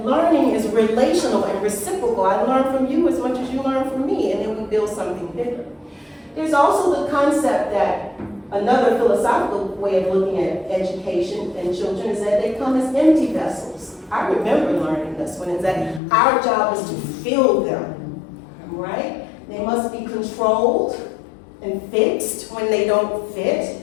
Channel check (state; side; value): drops out; right; at 16.0 s